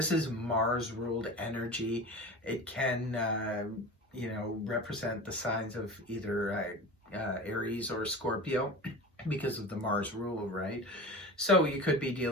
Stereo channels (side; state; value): both; normal; correlation 0.32